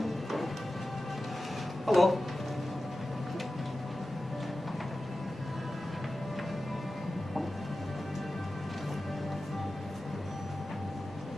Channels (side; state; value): both; normal; correlation 0.94